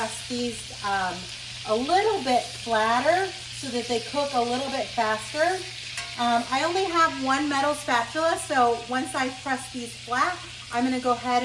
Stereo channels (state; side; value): identical; both; correlation 1.00